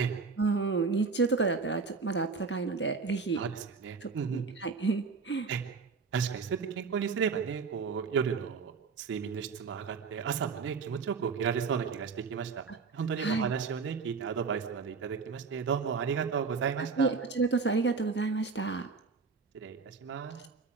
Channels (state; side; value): quieter; left; 5.0 dB